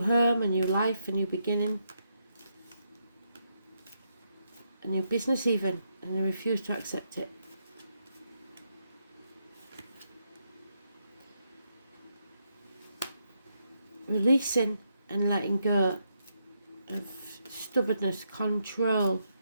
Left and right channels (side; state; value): both; inverted; correlation -0.79